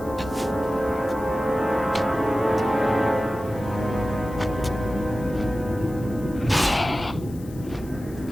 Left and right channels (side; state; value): left; noise; hiss, 23 dB below the sound